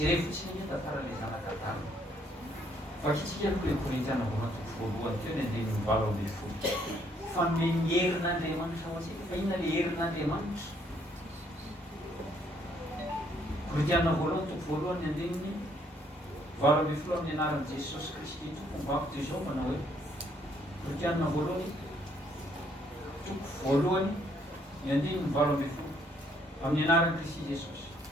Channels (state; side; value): normal; both; correlation 0.68